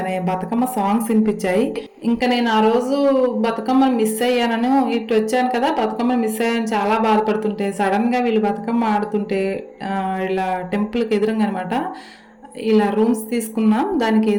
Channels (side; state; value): both; identical; correlation 1.00